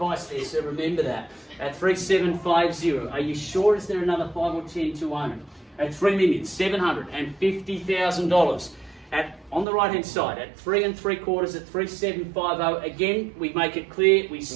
there, so remember that. At 3750, are you sure? Is there another 5 or 10 to own? At $3,750,000. On the right hand side, at 3 3/4 at 3750. Again, we make it clear, we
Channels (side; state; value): left; drops out; at 9.7 s